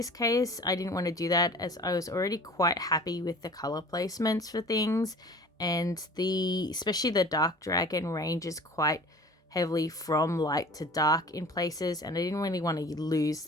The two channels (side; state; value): both; normal; correlation 0.43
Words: case, I didn't want to do that, as I was already quite happy with the color placements for things. And especially the dark dragon ranges quite heavily from light to dark in places, and I didn't really want to lose